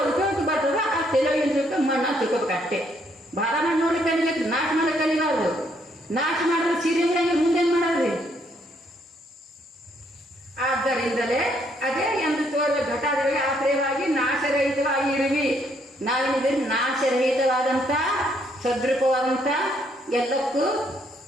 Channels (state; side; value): normal; both; correlation 0.70